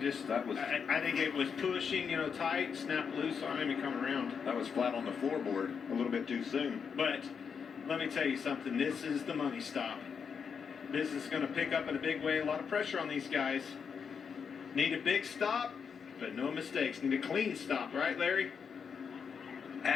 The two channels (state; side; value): quieter; right; 6.4 dB